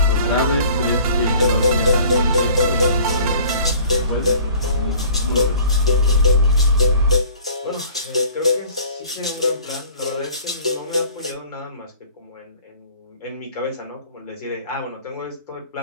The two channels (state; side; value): inverted; both; correlation -0.50